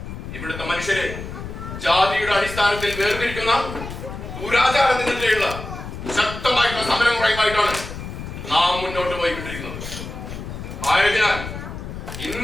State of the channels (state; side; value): noise; left; rumble, 9 dB below the sound